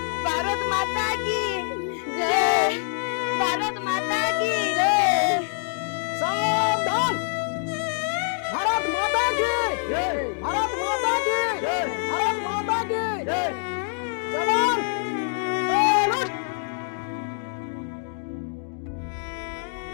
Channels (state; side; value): silent; right; 62 dB below the other